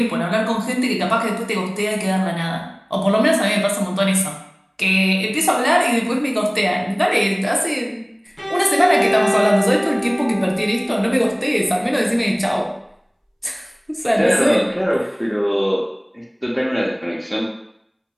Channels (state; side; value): identical; both; correlation 1.00